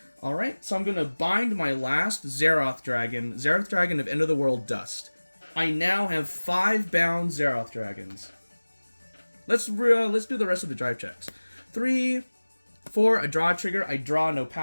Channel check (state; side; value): inverted; both; correlation -1.00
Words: Alright, so I'm going to bind my last Xerath Dragon of End of the World Dust. I now have 5 bound Xerath Dragons. Let's do the rest of the drive checks. 3, 4, a draw trigger. I draw, no